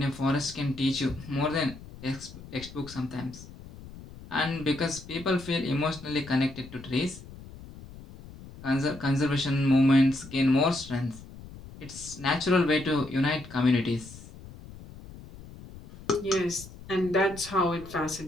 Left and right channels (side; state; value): left; noise; rumble, 17 dB below the sound